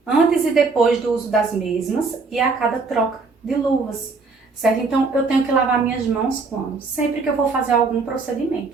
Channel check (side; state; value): left; quieter; 4.2 dB